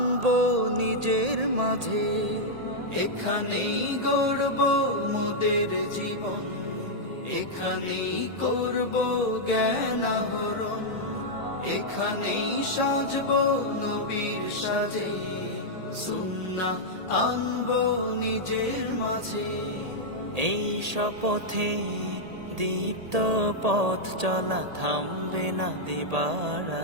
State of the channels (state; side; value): late; left; 1.8 ms